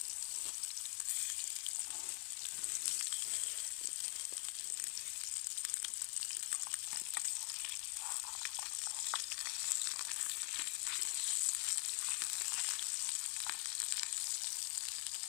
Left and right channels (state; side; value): quieter; right; 35.7 dB